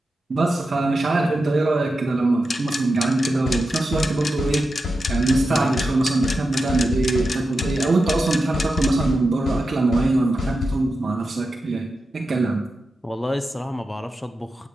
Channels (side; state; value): both; normal; correlation 0.90